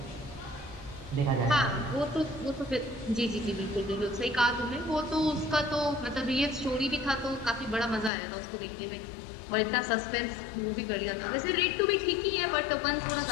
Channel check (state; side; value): drops out; right; at 8.1 s